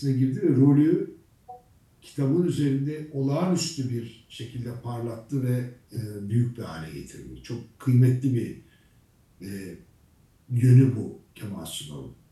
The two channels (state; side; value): identical; both; correlation 1.00